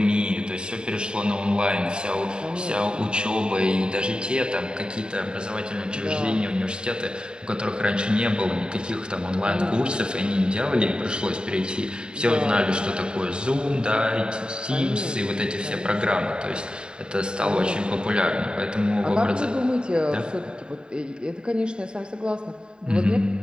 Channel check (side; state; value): left; late; 0.048 ms